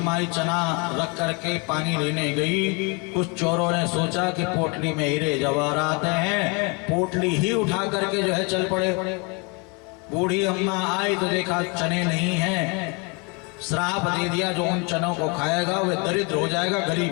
चना रख करके पानी लेने गई। कुछ चोरों ने सोचा कि पोटली में हीरे जवाहरात हैं, पोटली ही उठा करके जो है चल पड़े। बूढ़ी अम्मा आई तो देखा चने नहीं हैं, श्राप दे दिया जो उन चनों को खाएगा वह दरिद्र हो जाएगा,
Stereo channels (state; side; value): quieter; right; 31.1 dB